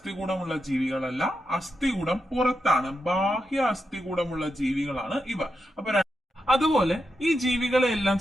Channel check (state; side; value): normal; both; correlation 0.86